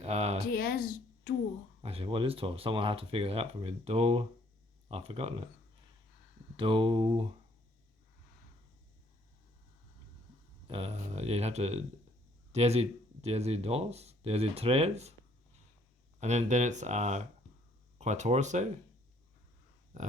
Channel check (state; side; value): normal; both; correlation 0.64